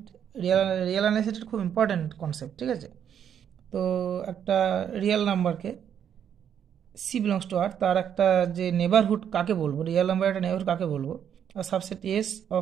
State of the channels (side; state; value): left; quieter; 8.8 dB